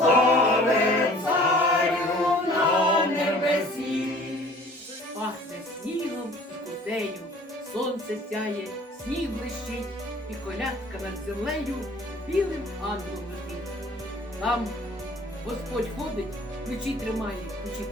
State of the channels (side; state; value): both; normal; correlation 0.50